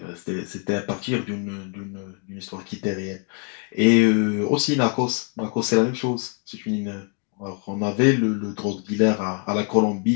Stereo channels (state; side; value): quieter; right; 37.7 dB